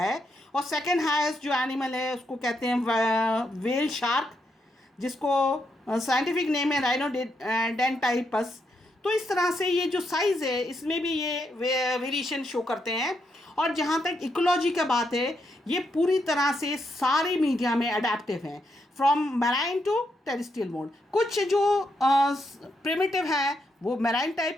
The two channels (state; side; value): normal; both; correlation 0.80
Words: और सेकेंड हाईएस्ट जो एनिमल है उसको कहते हैं वेल शार्क, जिसको साइंटिफिक नेम है राइनोडेंटाइपस। तो इस तरह से ये जो साइज़ है इसमें भी ये वेरिएशन शो करते हैं। और जहाँ तक इकोलॉजी का बात है, ये पूरी तरह से सारे मीडिया में अडेप्टिव हैं, from marine to terrestrial mode. कुछ जो प्रिमिटिव हैं वो मैराइन